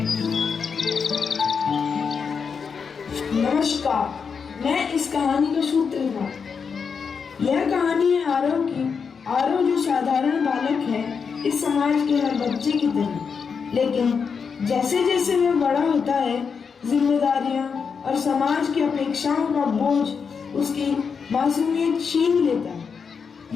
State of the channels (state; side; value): quieter; right; 6.0 dB